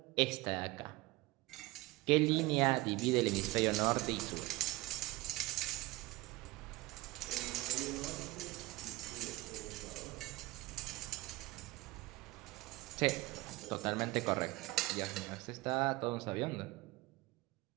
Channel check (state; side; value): quieter; left; 20.7 dB